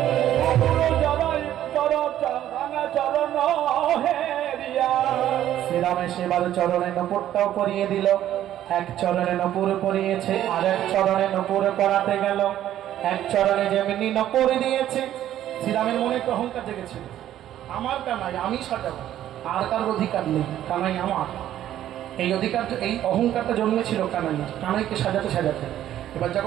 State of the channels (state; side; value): quieter; left; 12.0 dB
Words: শ্রীরামে সেবার চরণে নপুরটাও পরিয়ে দিল। এক চরণে নপুর পরিয়েছে, আর এক চরণে নপুর পরাতে গেল। এক চরণে যেমনি নপুর দিয়েছে, শ্রীরামের মনে একটু অহংকার জেগেছিল, আমার কানাই, আমি সাজাবো, আর কার অধিকার নেই, কানাই আমার। এই অধিকার, এই অহংকারটা জন্মেছিল কানাইকে সাজাতে সাজাতে। এবার